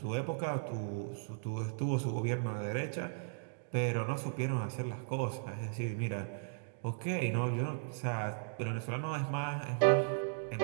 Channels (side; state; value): left; silent; digital silence